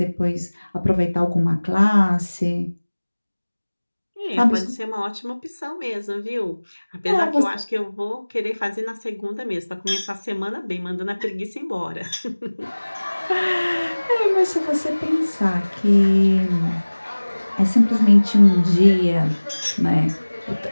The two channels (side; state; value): both; inverted; correlation -1.00